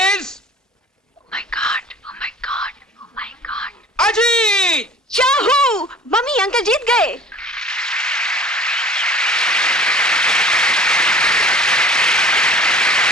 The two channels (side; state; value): both; normal; correlation 0.45